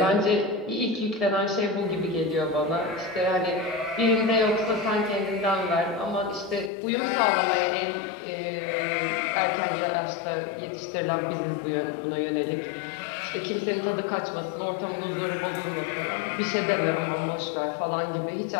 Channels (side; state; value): right; drops out; at 6.7 s